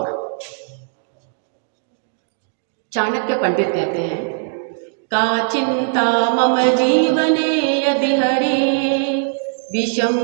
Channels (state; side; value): silent; left; digital silence